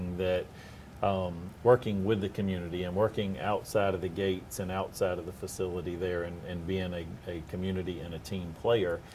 that working with the community and working outside of the gates and outside of the facility there and being a community and a team player,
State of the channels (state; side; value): identical; both; correlation 1.00